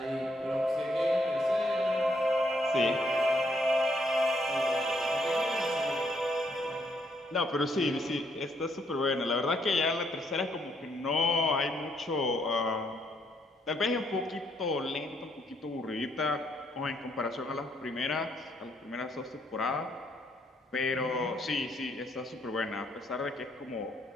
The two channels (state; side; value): normal; both; correlation 0.72